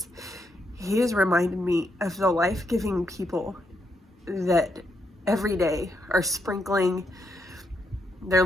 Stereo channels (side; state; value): both; normal; correlation 0.79